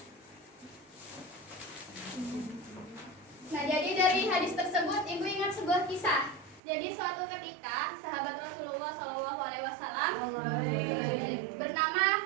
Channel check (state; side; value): drops out; left; at 6.6 s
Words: Nah, jadi dari hadis tersebut ibu ingat sebuah kisah. Jadi suatu ketika sahabat Rasulullah SAW bernama